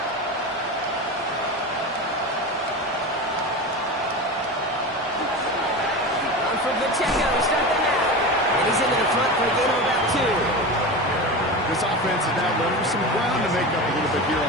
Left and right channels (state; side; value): normal; both; correlation 0.26